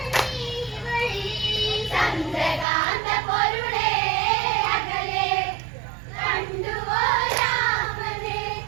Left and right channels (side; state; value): left; drops out; at 2.7 s